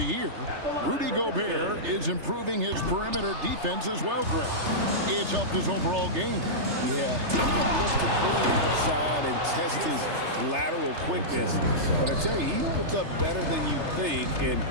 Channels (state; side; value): late; left; 3.3 ms